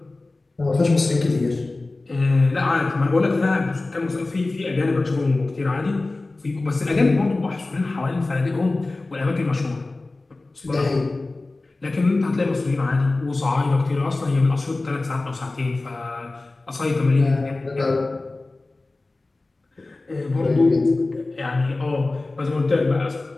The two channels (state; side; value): quieter; right; 3.2 dB